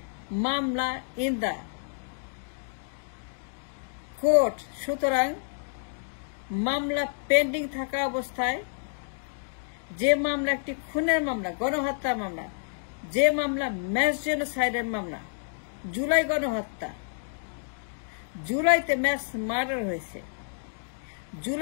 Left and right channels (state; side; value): silent; right; digital silence